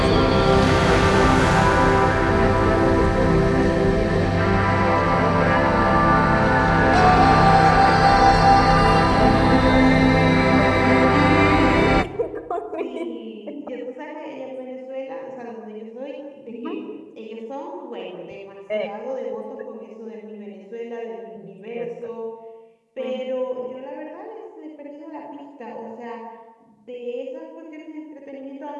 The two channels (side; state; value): both; identical; correlation 1.00